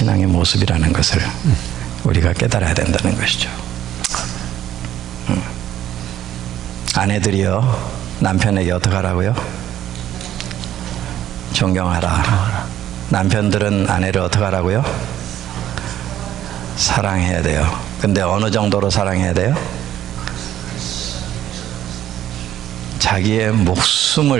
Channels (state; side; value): quieter; left; 11.9 dB